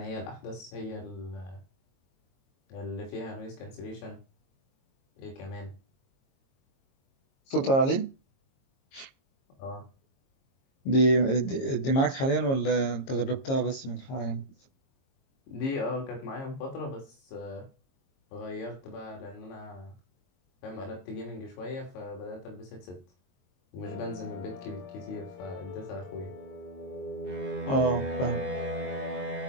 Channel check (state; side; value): late; right; 22 ms